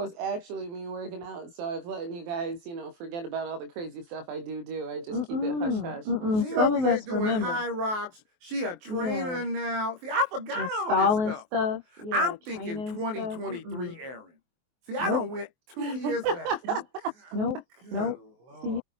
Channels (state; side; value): late; left; 23 ms